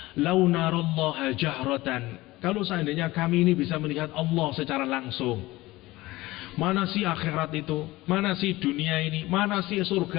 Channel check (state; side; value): quieter; right; 19.0 dB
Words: lau narallaha jahratan, kalau seandainya kami ini bisa melihat Allah secara langsung, mana sih akhirat itu, mana sih dunia ini, mana sih